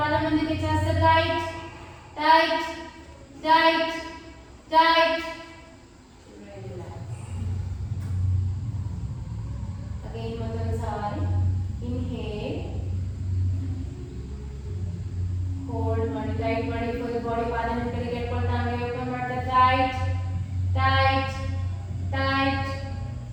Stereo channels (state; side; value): identical; both; correlation 1.00